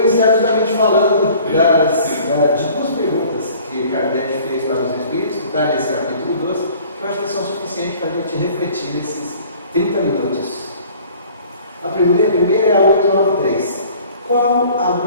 justamente falando de 2 perguntas que Kardec fez para os Espíritos, que está nesse capítulo 12, que eu acho que são suficientes para a gente refletir nesses 30 minutos. A primeira é a 893. Qual a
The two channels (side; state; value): both; inverted; correlation -0.50